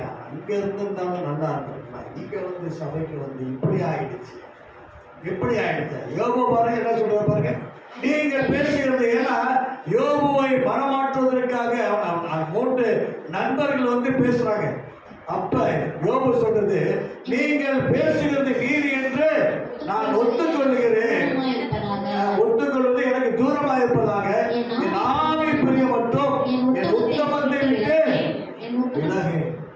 அங்க இருந்திருந்தாலும் நல்லா இருந்திருக்கலாம், இங்க வந்து சபைக்கு வந்து இப்படி ஆயிடுச்சு. யோபு பாருங்க என்ன சொல்ற பாருங்க. நீங்கள் பேசுகிறது ஏன்னா யோபுவை மனமாற்றுவதற்காக 3 நண்பர்கள் வந்து பேசுறாங்க. அப்ப யோபு சொல்றது, நீங்கள் பேசுகிறது நீதி என்று நான் ஒத்துக்கொள்ளுகிறேன். ஒத்துக்கொள்வது எனக்கு தூரமாக இருப்பதாக என் ஆவி பிரிய மட்டும் என் உத்தமத்தை விட்டு விலகு.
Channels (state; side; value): identical; both; correlation 1.00